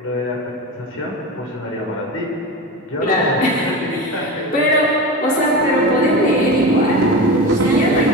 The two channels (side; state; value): both; normal; correlation 0.26